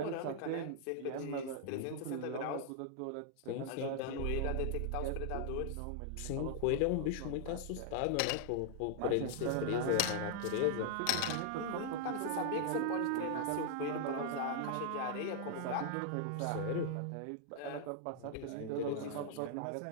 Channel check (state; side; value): different; both; correlation 0.00